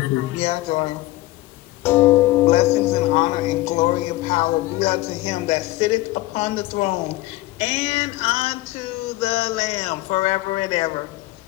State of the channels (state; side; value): quieter; right; 18.2 dB